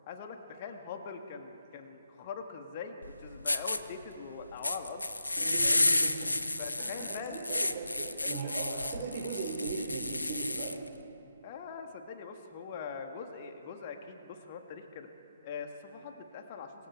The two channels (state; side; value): inverted; both; correlation -0.88